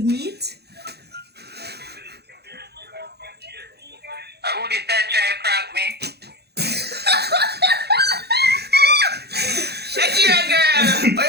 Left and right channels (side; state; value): left; late; 0.48 ms